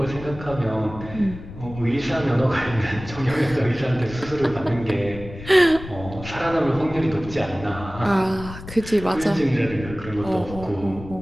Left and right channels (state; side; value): noise; left; rumble, 13 dB below the sound